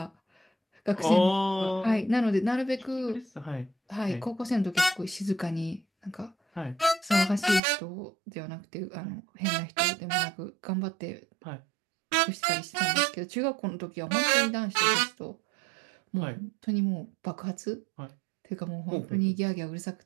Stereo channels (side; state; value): left; drops out; at 7.6 s